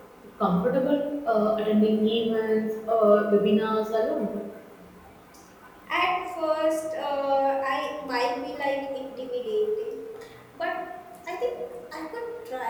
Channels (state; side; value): identical; both; correlation 1.00